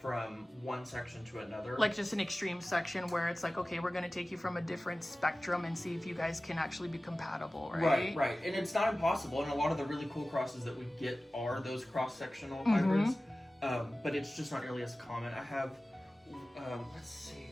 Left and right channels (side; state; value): both; normal; correlation 0.97